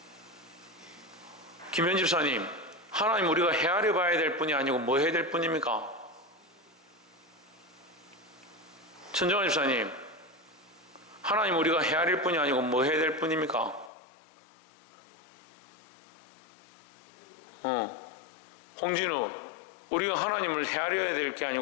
김현 집사님, 하나님 우리가 헤아려 봐야 될 뿐이 아니고 뭐 해야 될 뿐입니까? 천정환 집사님, 하나님 우리가 헤아릴 뿐이 아니고 뭐 해야 될 뿐입니까? 홍진우, 우리가 하나님을 헤아려야 될 게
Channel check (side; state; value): right; drops out; at 13.9 s